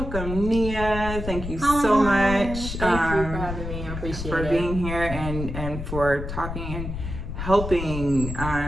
Nia. Thank you so much. Thank you for having me. I appreciate for it. being here and for talking and helping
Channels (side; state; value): left; noise; rumble, 6 dB below the sound